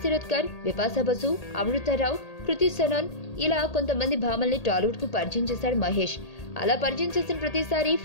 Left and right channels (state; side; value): late; right; 1.8 ms